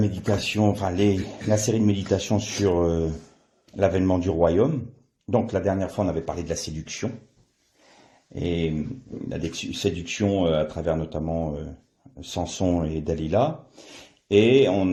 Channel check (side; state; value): both; identical; correlation 1.00